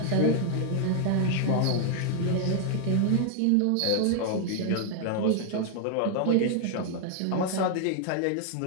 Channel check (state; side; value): different; both; correlation 0.00